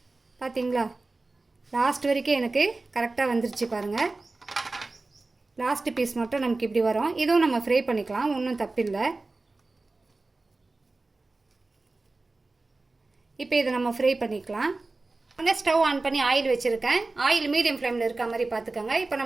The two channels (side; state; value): left; quieter; 3.3 dB